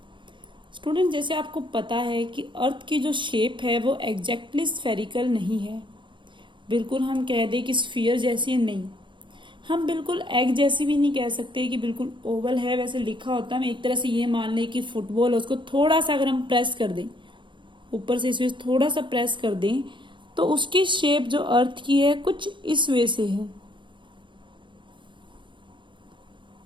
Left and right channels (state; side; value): late; left; 0.23 ms